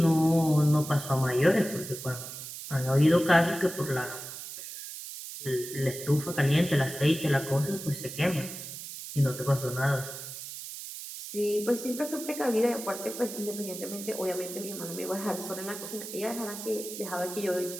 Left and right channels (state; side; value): noise; right; hiss, 10 dB below the sound